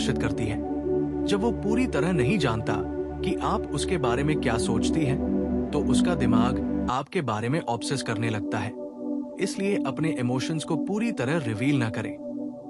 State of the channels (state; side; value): identical; both; correlation 1.00